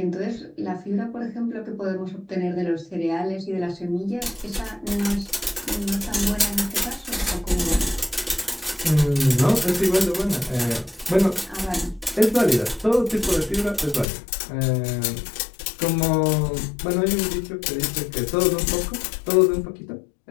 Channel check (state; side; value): drops out; right; at 14.1 s